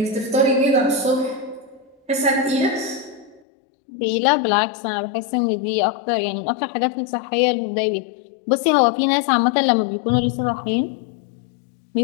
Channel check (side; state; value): right; drops out; at 3.4 s